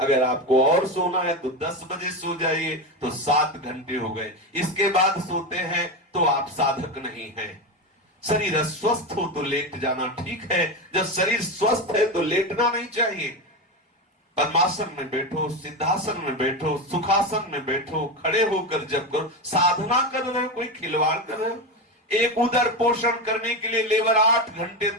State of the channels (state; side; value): normal; both; correlation 0.17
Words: आपको और सोना है तो 10 बजे सो जाइए, तो 7 घंटे हो गए। इसके बाद सोते हैं तो आप साधक नहीं हैं। शरीर अस्वस्थ हो तो लेट जाना ठीक है, जब शरीर स्वस्थ है तो लेटना नहीं चाहिए। पद्मासन में बैठो, सिद्धासन में बैठो, सुखासन में बैठो, खड़े होकर जब करो, साधना कर रहे हो, कोई खिलवाड़ कर रहे हो। एक उदर पोषण करने के लिए लेबर 8 घंटे